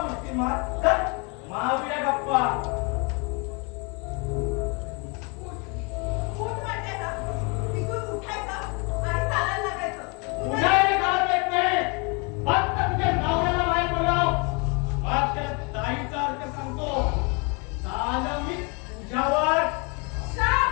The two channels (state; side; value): quieter; right; 32.1 dB